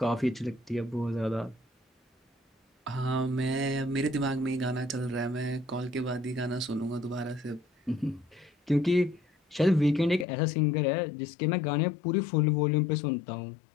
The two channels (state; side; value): drops out; right; at 10.2 s